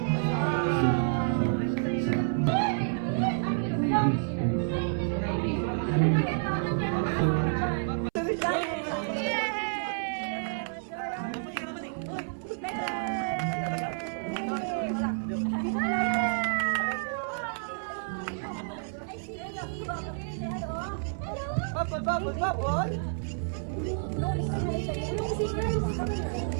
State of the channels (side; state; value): left; silent; 58 dB below the other